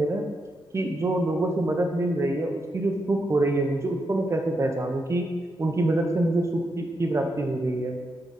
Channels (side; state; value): both; normal; correlation 0.83